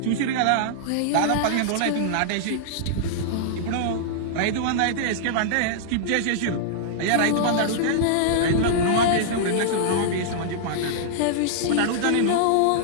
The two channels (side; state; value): both; different; correlation -0.01